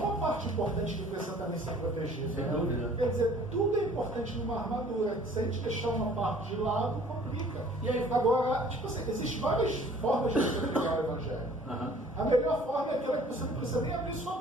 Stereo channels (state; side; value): normal; both; correlation 0.52